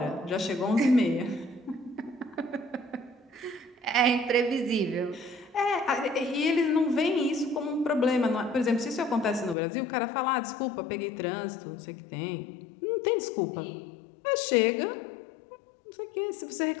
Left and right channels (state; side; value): drops out; right; at 9.6 s